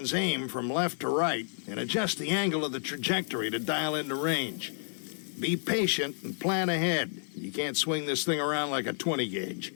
aim from left to right and adjust the angle of the trajectory to dial in the range. Be patient and plan ahead. You can't swing this thing around like a 20 gauge.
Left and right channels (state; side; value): silent; right; digital silence